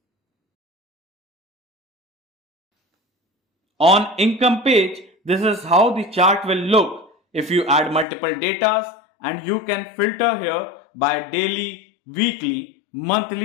On income page, this is how the chart will look if you add multiple datas and you can filter here by daily, weekly,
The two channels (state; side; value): drops out; right; at 8.1 s